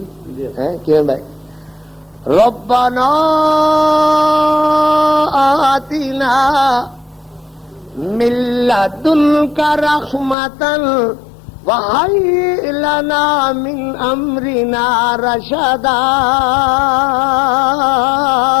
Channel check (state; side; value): drops out; right; at 10.4 s